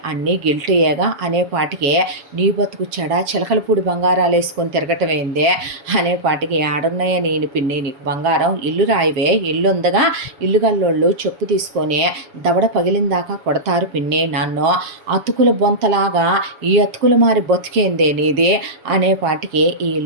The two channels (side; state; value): left; late; 7.1 ms